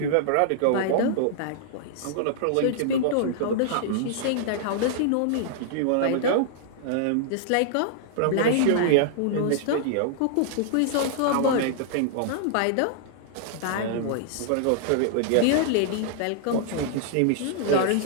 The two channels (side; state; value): both; different; correlation -0.01